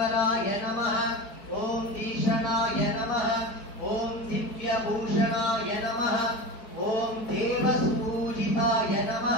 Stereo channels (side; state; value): right; late; 4.9 ms